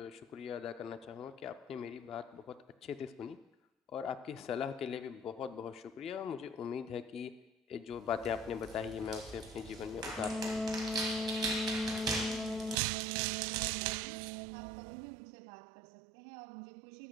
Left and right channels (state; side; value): drops out; left; at 12.8 s